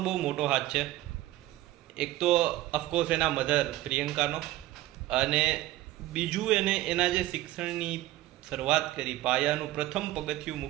બહુ મોટો હાથ છે. એક તો ઓફકોર્સ એના મધર પ્રિયંકાનો, અને બીજું એના જે શિક્ષણની શરૂઆત કરી, પાયાનું પ્રથમ પગથિયું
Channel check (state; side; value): quieter; left; 15.8 dB